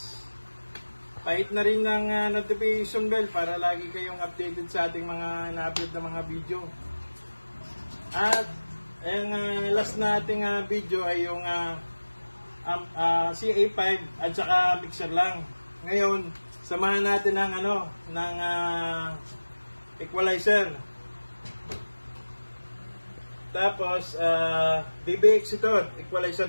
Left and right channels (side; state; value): both; inverted; correlation -1.00